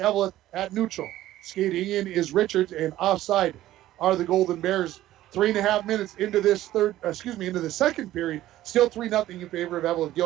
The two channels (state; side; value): quieter; left; 14.4 dB